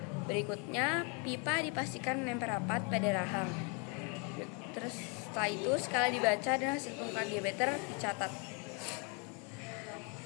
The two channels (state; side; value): quieter; right; 35.0 dB